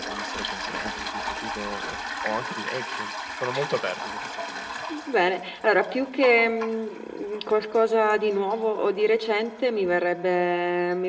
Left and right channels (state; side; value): identical; both; correlation 1.00